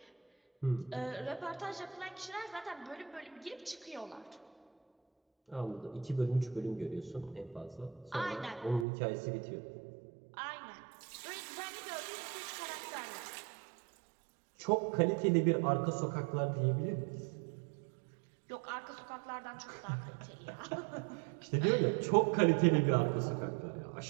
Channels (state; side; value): drops out; left; at 8.8 s